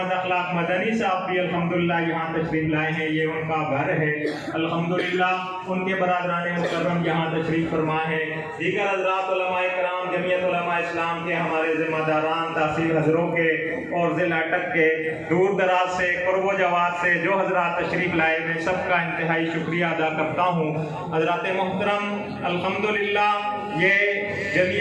اخلاق مدنی صاحب بھی الحمدللہ یہاں تشریف لائے ہیں، یہ ان کا گھر ہے الحمدللہ، ان کے برادران مکرم یہاں تشریف فرما ہے، دیگر حضرات علماء کرام، جمعیت علماء اسلام کے ہمارے ذمہ داران، تحصیل حضروں کے اور ضلع اٹک کے، دور دراز سے، قرب و جوار سے جو حضرات تشریف لائے، میں سب کا انتہائی شکریہ ادا کرتا ہوں۔ حضرات محترم، الحمدللہ یہ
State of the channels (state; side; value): identical; both; correlation 1.00